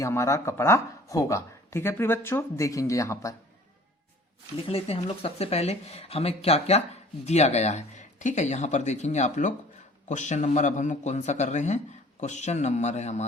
हमारा कपड़ा होगा। ठीक है प्रिय बच्चों, देखेंगे यहां पर लिख लेते हैं हम लोग। सबसे पहले हमें क्या क्या दिया गया है। ठीक है, यहां पर देखेंगे आप लोग क्वेश्चन नंबर, अब हम लोग कौन सा कर रहे हैं, क्वेश्चन नंबर है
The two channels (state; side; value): normal; both; correlation 0.50